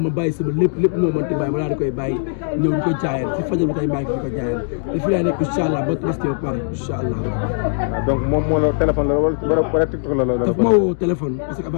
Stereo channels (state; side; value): silent; right; digital silence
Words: bàyyi sama lépp moo mënti bàyyi ma daal di koy bàyyi ñëw di ko jaayal si fajar ba tey maa ngi fi ko jaayal te fii laa nekk incha allah ba tabaski ba pare incha allah. donc moom moo la téléphone la wala TikTok la daf ma woo téléphone parce que